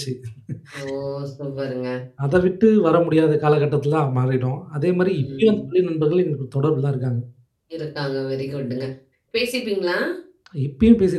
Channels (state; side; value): identical; both; correlation 1.00